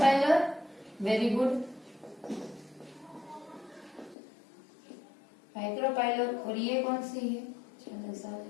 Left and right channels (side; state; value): right; drops out; at 4.2 s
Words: Very good, micropylar. और ये कौन सी है, चालाज़ल।